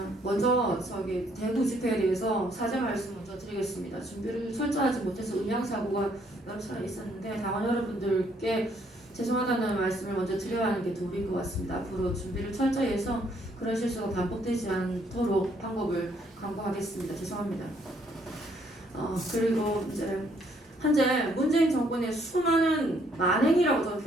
먼저 대구 집회에 대해서 사죄 말씀 먼저 드리겠습니다. 준비를 철저하지 못해서 음향사고가 여러 차례 있었는데 당원 여러분들께 죄송하다는 말씀을 먼저 드려야 하는 게 도리인 것 같습니다. 앞으로 준비를 철저히 해서 그런 실수가 반복되지 않도록 방법을 강구하겠습니다. 죄송합니다. 그리고 이제 현재 문재인 정권의 수많은 만행이라고 저는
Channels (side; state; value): both; normal; correlation 0.68